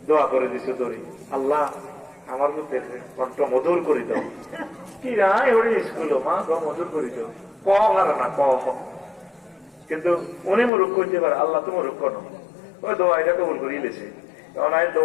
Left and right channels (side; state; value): right; drops out; at 10.7 s